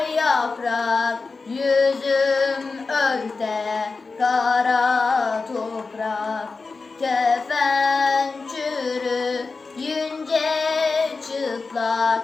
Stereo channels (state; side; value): quieter; right; 4.1 dB